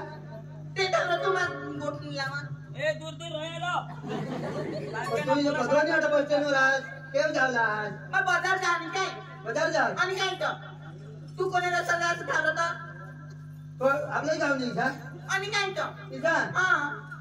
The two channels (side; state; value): both; identical; correlation 1.00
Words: ते तर तुम्हाला गोठणी लावा ए दूर दूर राहिलो तुम्ही भगवान आता बस स्टँडवर आज केव जावला आज मग बाजार जा आणि काय बाजार जा आणि काय तर तू कोणाला सगळं ठरवता तो आपलं गाव नाही का आणि काय तर इसा हा